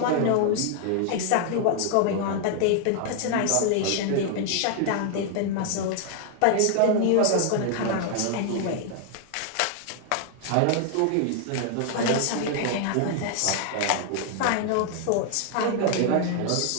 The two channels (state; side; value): different; both; correlation 0.00